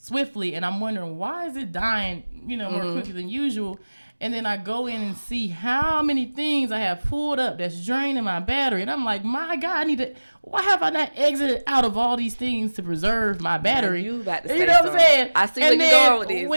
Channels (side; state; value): both; inverted; correlation -1.00